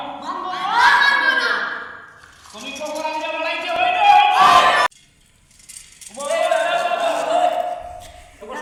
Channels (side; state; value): both; identical; correlation 1.00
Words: মানবো না তুমি কখন আইয়া বলাইতে হই না